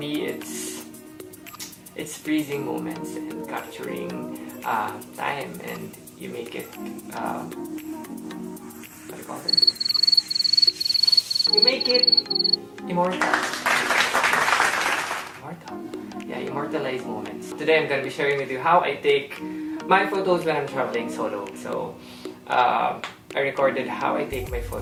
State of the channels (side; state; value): both; identical; correlation 1.00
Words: it's freezing moments and capturing time, and you make it what do you call it? You make it immortal. Yeah, immortalize moments. Today I'm gonna be sharing with you how I take my photos when I'm traveling solo. So I recorded how I take my